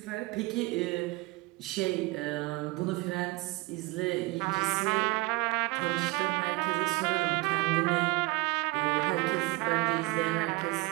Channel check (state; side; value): quieter; left; 22.8 dB